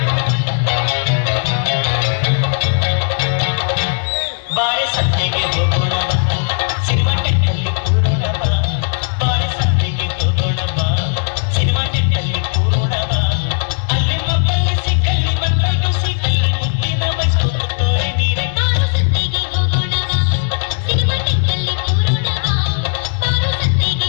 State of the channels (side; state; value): right; silent; digital silence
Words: ಬಾಳೆ ಸಂತೆಗೆ ಹೋಗೋಣ ಬಾ, ಸಿನಿಮಾ ಟೆಕ್ಕಲ್ಲಿ ಕೂರೋಣ ಬಾ. ಬಾಳೆ ಸಂತೆಗೆ ಹೋಗೋಣ ಬಾ, ಸಿನಿಮಾ ಟೆಕ್ಕಲ್ಲಿ ಕೂರೋಣ ಬಾ. ಅಲ್ಲಿ ಮಕ್ಕಳು ಸಿಕ್ಕಲ್ಲಿ ಮಕ್ಕಳು ಸಿಕ್ಕಲ್ಲಿ ಮುದ್ದಿನ ಬೈಸ್ಕೊಂಡು ತೋರೆ ನೀರೆ. ಬಾರು ಸಂತೆಗೆ ಹೋಗೋಣ ಬಾ, ಸಿನಿಮಾ ಟೆಕ್ಕಲ್ಲಿ ಕೂರೋಣ ಬಾ. ಬಾರು